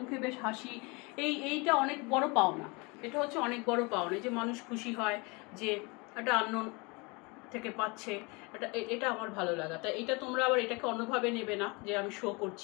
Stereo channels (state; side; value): quieter; right; 28.1 dB